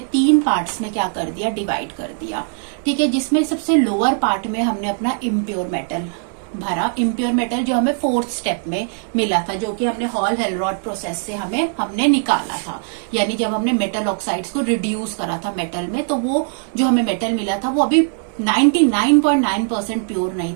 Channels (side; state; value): left; silent; digital silence